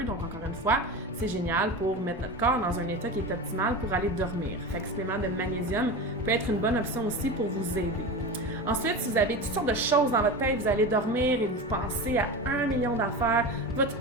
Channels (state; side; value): normal; both; correlation 0.26